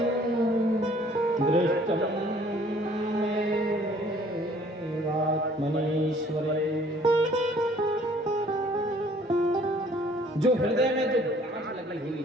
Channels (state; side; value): normal; both; correlation 0.57